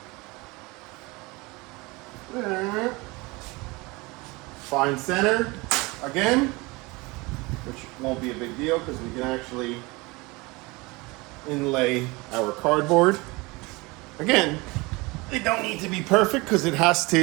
Find center again, which won't be a big deal because we can actually inlay our cardboard. Again, they don't need to be perfect because it has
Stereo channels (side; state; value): left; quieter; 24.3 dB